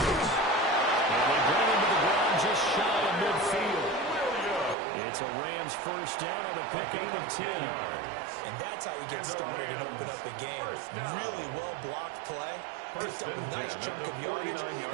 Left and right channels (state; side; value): drops out; left; at 4.8 s